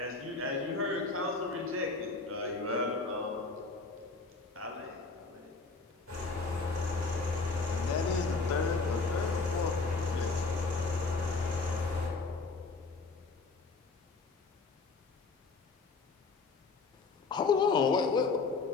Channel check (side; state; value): right; quieter; 4.1 dB